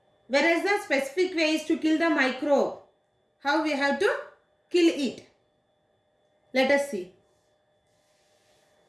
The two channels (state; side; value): identical; both; correlation 1.00